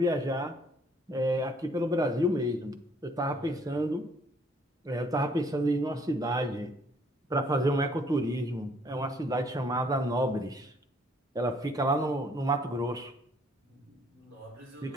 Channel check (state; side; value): normal; both; correlation 0.63